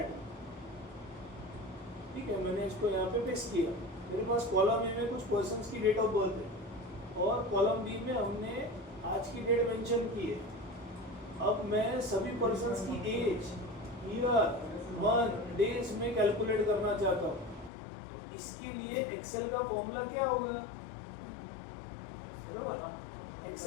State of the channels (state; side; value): drops out; right; at 17.7 s